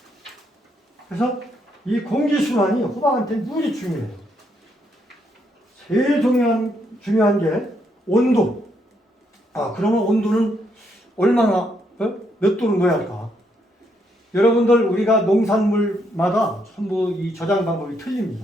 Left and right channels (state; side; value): normal; both; correlation 0.75